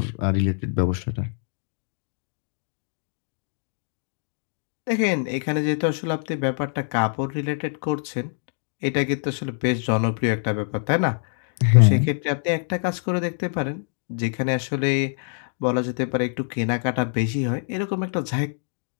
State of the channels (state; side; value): silent; right; 62 dB below the other